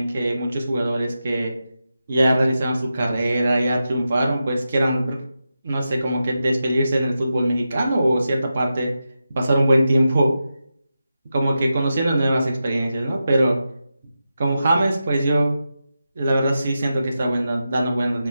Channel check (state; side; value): inverted; both; correlation -0.90